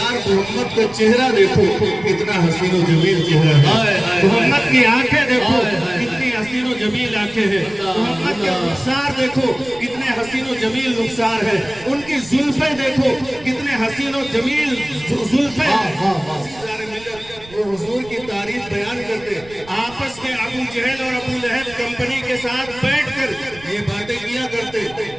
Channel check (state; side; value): noise; right; rumble, 21 dB below the sound